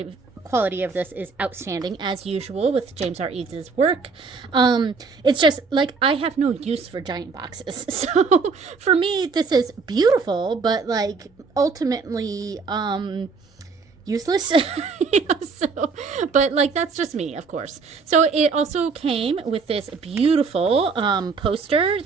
of this is outstanding, as usual with James R. Eads' work. It's just, like, I have no use for giant boxes. So, for me, this is beautiful, but, like, ultimately, useless. But like, that's just me, of course. So it also came with this beautiful poster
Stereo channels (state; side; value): quieter; left; 4.8 dB